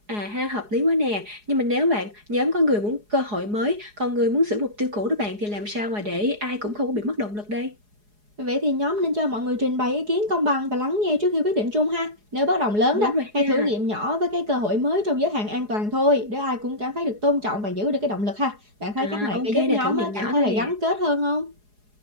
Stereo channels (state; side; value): late; left; 4.8 ms